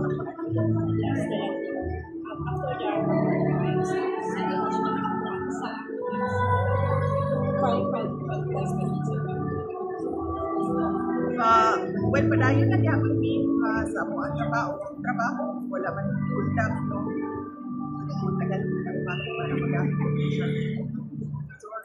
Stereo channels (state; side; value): identical; both; correlation 1.00